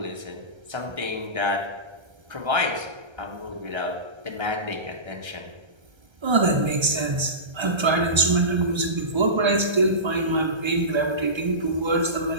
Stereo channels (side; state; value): left; late; 1.3 ms